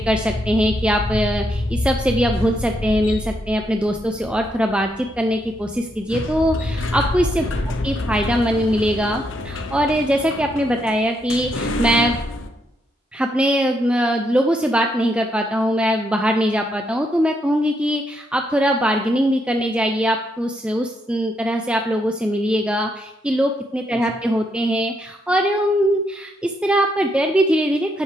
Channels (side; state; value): both; normal; correlation 0.77